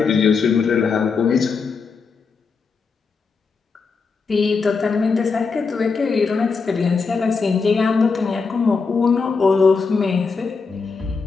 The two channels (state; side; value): quieter; right; 4.9 dB